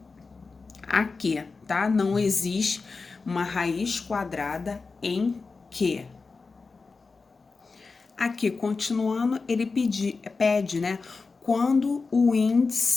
a quê, tá? Não existe uma raiz quadrada em quê. Aqui, continuando, ele pede, né? Quando o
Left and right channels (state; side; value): quieter; right; 4.3 dB